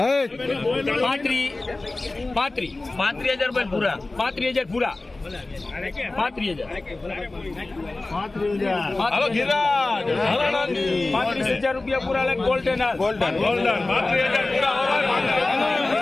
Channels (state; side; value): quieter; right; 3.1 dB